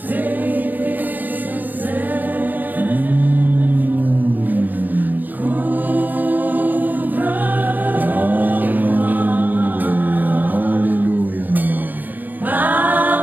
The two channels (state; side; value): late; left; 0.087 ms